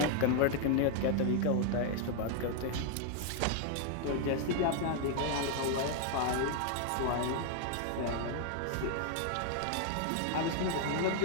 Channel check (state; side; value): different; both; correlation 0.00